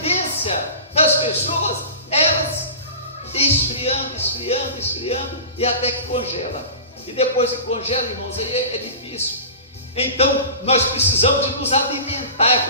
das pessoas, elas esfriando, esfriando e até que congela. E depois que congela, irmãos, aí é difícil. Então, nós precisamos de nos alimentar, é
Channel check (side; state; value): both; inverted; correlation -0.35